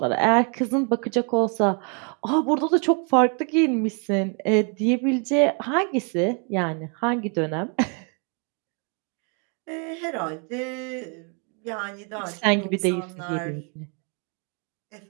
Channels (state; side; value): quieter; left; 37.3 dB